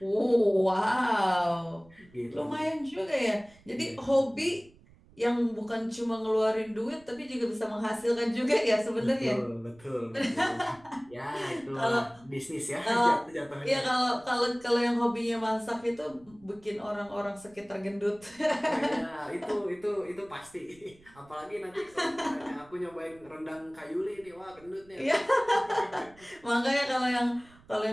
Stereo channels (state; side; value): noise; right; rumble, 27 dB below the sound